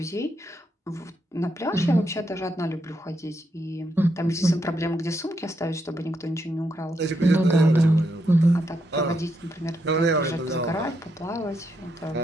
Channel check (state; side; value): normal; both; correlation 0.80